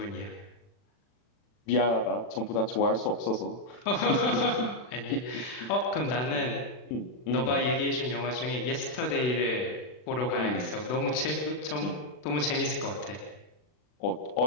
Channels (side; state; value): right; late; 40 ms